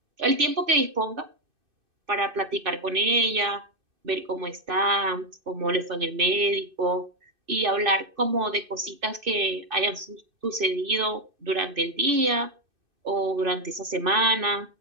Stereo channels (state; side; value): late; left; 2.6 ms